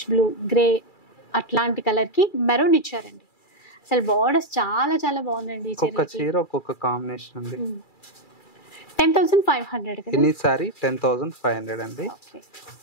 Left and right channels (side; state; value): right; late; 2.3 ms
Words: బ్లూ, గ్రే అట్లాంటి కలర్ కి మెరూన్ ఇచ్చారండి. అసలు బార్డర్స్ చాలా చాలా బాగుందండి. ఒక్కొక్క చీర ఒక్కొక్క కాంబినేషన్ అండి. 10,500 కదా. ఎనీ సారీ 10,500 అండి.